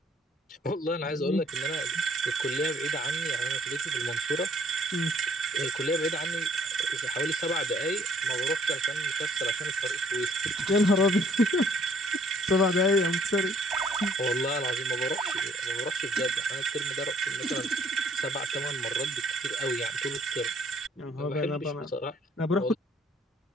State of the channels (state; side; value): normal; both; correlation 0.61